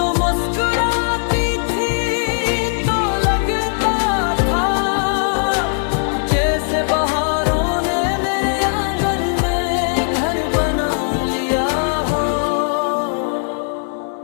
मुस्कुराती थी तो लगता था जैसे बहारों ने मेरे आंगन में घर बना लिया हो।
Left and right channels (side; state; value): right; silent; 65 dB below the other